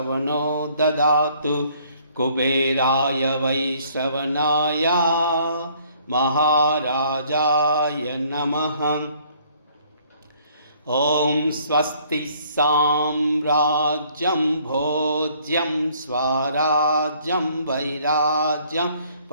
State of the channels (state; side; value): inverted; both; correlation -0.61